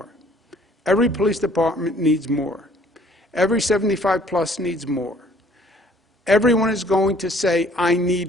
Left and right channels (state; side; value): normal; both; correlation 0.58